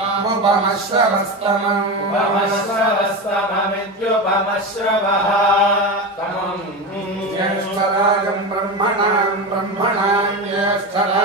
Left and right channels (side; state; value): both; normal; correlation 0.21